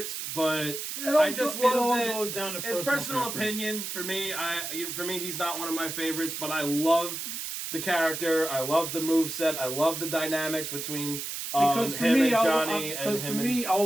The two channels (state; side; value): noise; right; hiss, 5 dB below the sound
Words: but I just love that. Goes down to It's personal opinion for me. For me, he's not one of my favorites, but I love the character. I love the moveset. I love the dynamics between because for him me, and Johnny and him and